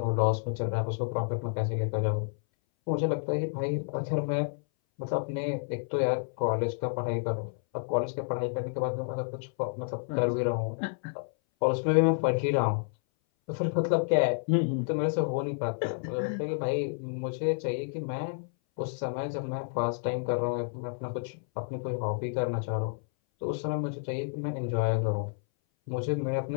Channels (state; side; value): silent; right; 58 dB below the other